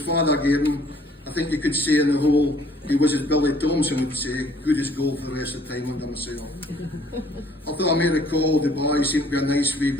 gave him, I I think you could say in the whole, he was, as Billy Thompson would say, good as gold for the rest of the time under myself. Although I may recall the boys seemed to be a nice wee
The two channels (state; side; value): normal; both; correlation 0.59